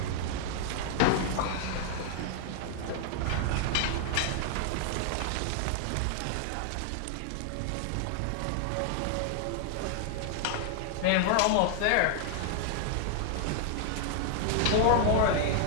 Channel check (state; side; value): different; both; correlation 0.00